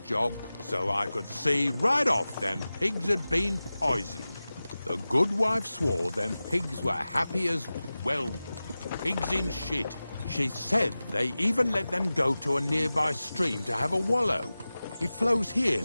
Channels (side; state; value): both; inverted; correlation -0.96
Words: so I could see right off them pigs had been poisoned. The good wife swore them pigs were happy as, well, pigs in shit. She said they even let them go to a nearby stream to have a wallow. It flows here